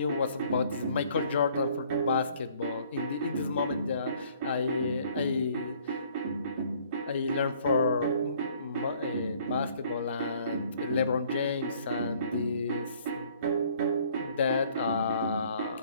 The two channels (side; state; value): both; inverted; correlation -0.59